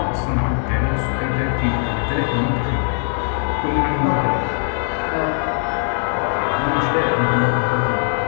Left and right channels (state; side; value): silent; right; digital silence